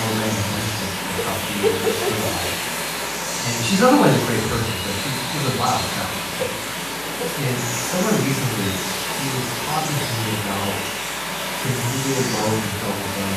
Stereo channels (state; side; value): noise; left; hum, 21 dB below the sound